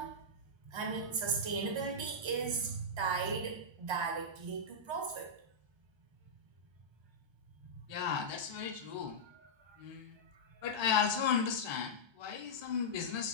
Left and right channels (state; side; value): late; left; 1.3 ms